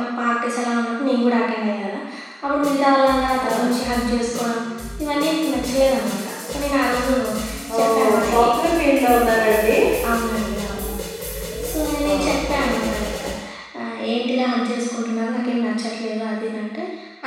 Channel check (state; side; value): identical; both; correlation 1.00